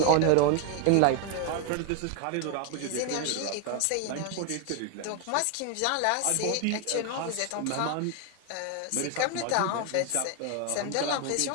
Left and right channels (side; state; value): both; different; correlation 0.01